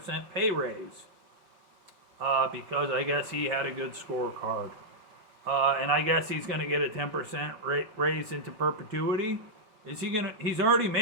pay raise because I guess he had a good scorecard. And I guess he's going to get a 10% raise into perpetuity. He's already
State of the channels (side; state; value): left; late; 4.8 ms